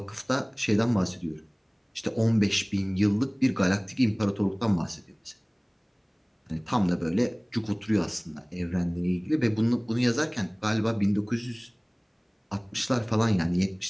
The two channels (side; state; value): both; identical; correlation 1.00